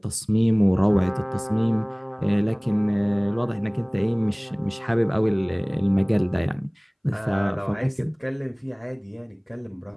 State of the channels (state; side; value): identical; both; correlation 1.00